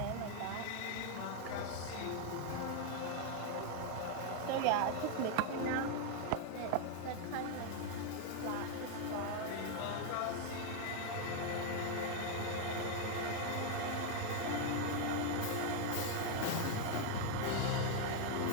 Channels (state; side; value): different; both; correlation 0.01